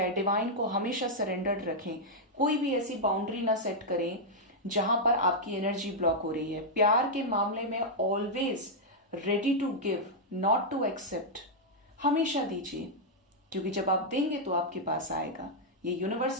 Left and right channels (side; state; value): both; normal; correlation -0.05